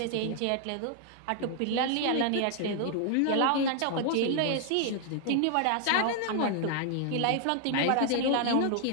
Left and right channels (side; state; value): both; different; correlation 0.00